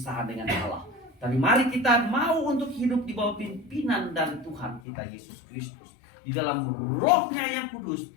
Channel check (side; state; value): right; drops out; at 4.8 s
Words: dengan Allah. Tapi mari kita mau untuk hidup di bawah pimpinan dari Tuhan kita Yesus Kristus, di dalam rohnya yang kudus,